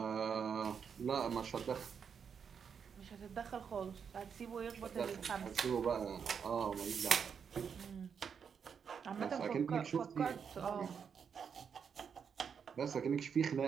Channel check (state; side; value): quieter; left; 6.9 dB